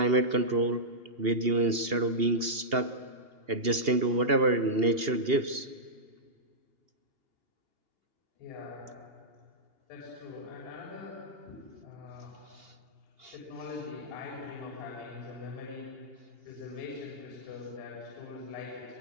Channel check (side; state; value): left; late; 2.8 ms